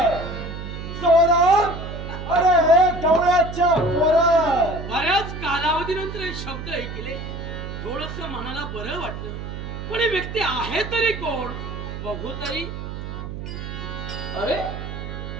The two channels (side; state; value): right; noise; hum, 8 dB below the sound